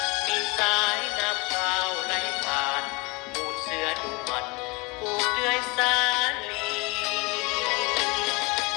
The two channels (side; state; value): right; quieter; 25.5 dB